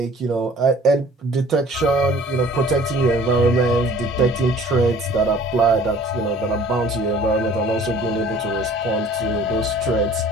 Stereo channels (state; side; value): normal; both; correlation 0.51